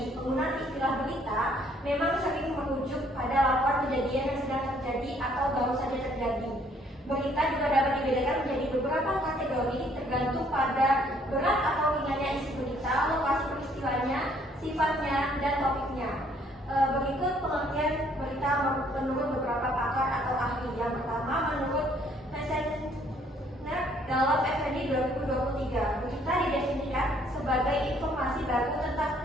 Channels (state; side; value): normal; both; correlation 0.64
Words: Penggunaan istilah berita memang sering merujuk pada laporan kejadian yang sedang terjadi atau baru saja terjadi. Berita juga dapat dibedakan menjadi beberapa kategori tergantung pada berat atau ringannya isi berita, lokasi peristiwanya, sifatnya, dan topiknya. Berikut pengertian berita menurut beberapa pakar atau ahli. Yang pertama, menurut Messenger dalam FND 2023, berita didefinisikan sebagai informasi baru tentang